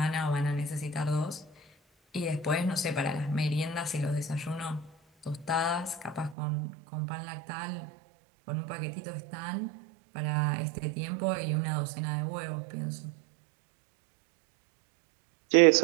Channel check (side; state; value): left; drops out; at 6.4 s